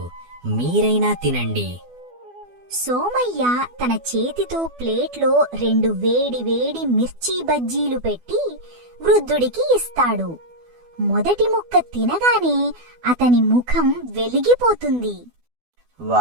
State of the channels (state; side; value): late; left; 12 ms